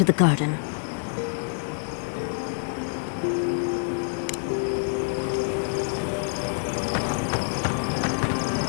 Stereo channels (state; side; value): silent; right; digital silence